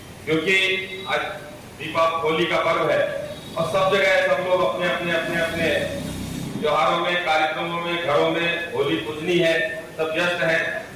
क्योंकि आज दीपावली होली का पर्व है और सब जगह सब लोग अपने अपने अपने अपने त्योहारों में, कार्यक्रमों में, घरों में होली पूजनी है, सब व्यस्त हैं।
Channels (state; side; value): identical; both; correlation 1.00